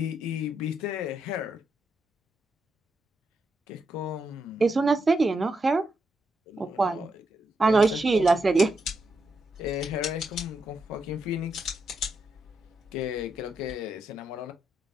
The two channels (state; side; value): normal; both; correlation 0.82